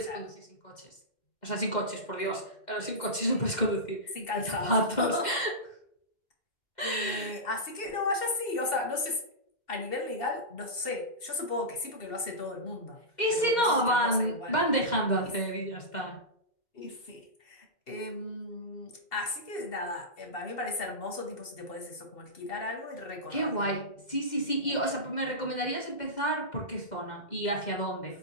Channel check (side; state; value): right; late; 2.7 ms